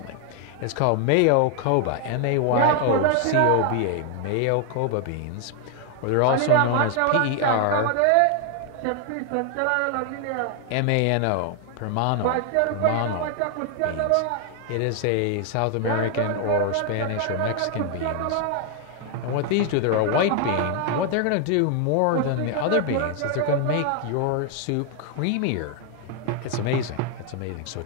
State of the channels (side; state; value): both; different; correlation 0.00